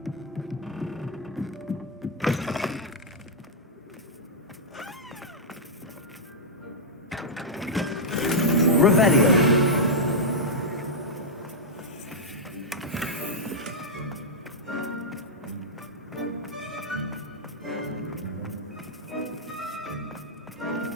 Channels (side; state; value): both; normal; correlation -0.06